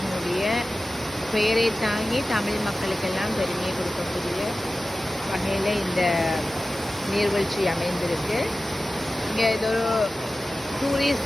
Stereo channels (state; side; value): normal; both; correlation 0.95